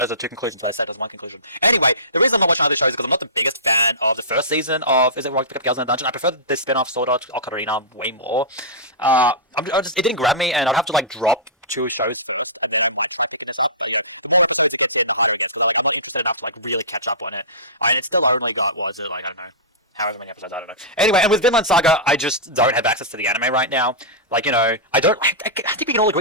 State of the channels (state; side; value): normal; both; correlation -0.19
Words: are two conclusions I said as one conclusion. Anyway, the reason I'm not watching other shows is because I'm not the biggest fan of the first season of Is It Wrong to Pick Up Girls in a Dungeon. I prefer the spin-off Sword Art Ocarina way more. It didn't grab me, and I'd have to like drop two shows first, and then I pick this up. But, you know, the more episodes it gets in, the harder it gets. Because I'm not interested enough to like really catch up on it. And it's still only got, what is it, like, I don't know, however many episodes, I don't know. Anyway, and with Vinland Saga, I just don't have access to the anime right now. Like, you know, I think we can all